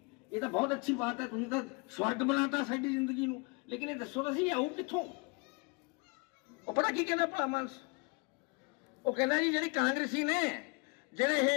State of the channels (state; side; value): quieter; right; 30.3 dB